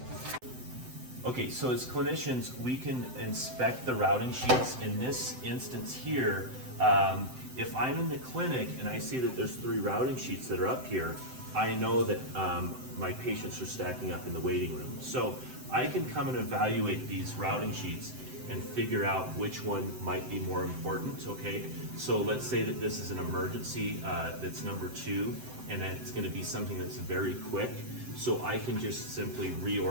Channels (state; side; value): late; left; 7.8 ms